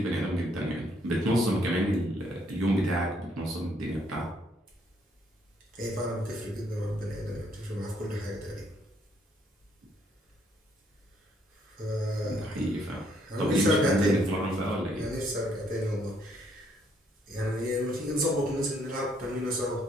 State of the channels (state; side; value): normal; both; correlation 0.69